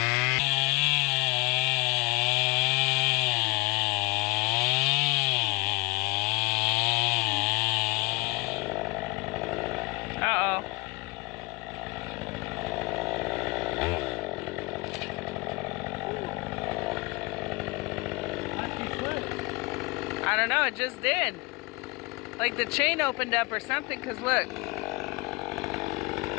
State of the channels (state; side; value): quieter; right; 27.1 dB